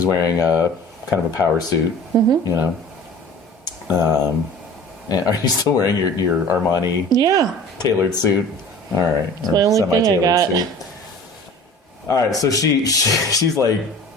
wearing a kind of a power suit, and are you still wearing your Armani tailored suit? All right. It's my only thing I got. Suit. All right, so she's like,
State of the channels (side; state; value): both; normal; correlation 0.43